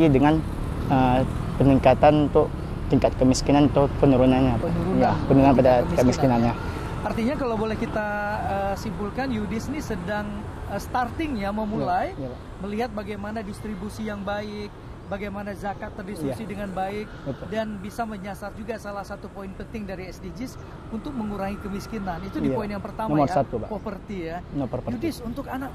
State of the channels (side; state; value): both; identical; correlation 1.00